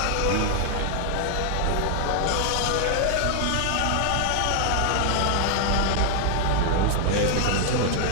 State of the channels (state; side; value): different; both; correlation 0.00